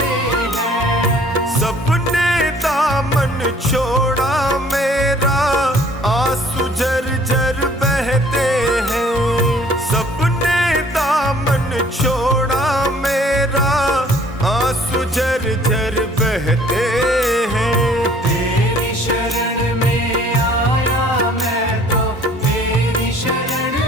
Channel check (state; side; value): normal; both; correlation 0.56